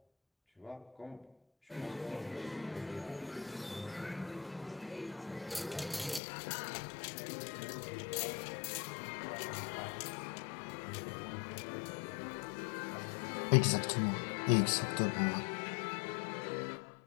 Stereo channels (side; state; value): right; drops out; at 6.2 s